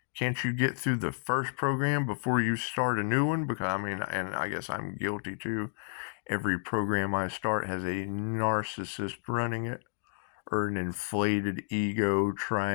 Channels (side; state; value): right; silent; digital silence